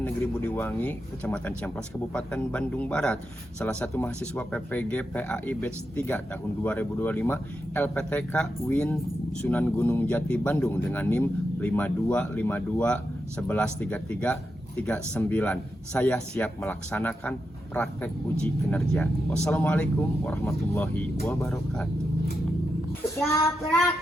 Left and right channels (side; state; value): both; normal; correlation 0.87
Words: Negeri Budiwangi, Kecamatan Ciamplas, Kabupaten Bandung Barat. Salah satu mahasiswa PPG PAI Batch 3 tahun 2025 LPTK Win Sunan Gunung Jati Bandung dengan NIM 5252113339. Saya siap melaksanakan praktek uji kinerja. Wassalamualaikum warahmatullahi wabarakatuh. Siap,